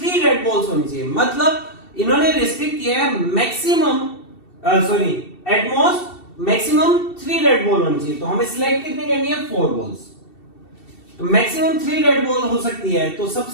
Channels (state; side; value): late; right; 2.7 ms